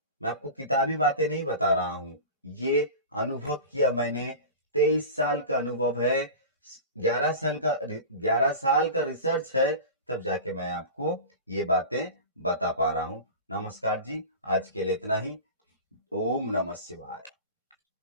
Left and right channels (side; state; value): both; inverted; correlation -0.31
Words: मैं आपको किताबी बातें नहीं बता रहा हूं, ये अनुभव किया मैंने। 23 साल का अनुभव है, 11 साल का रिसर्च है, तब जाके मैं आपको ये बातें बता पा रहा हूं। नमस्कार जी, आज के लिए इतना ही। ओम नमः शिवाय।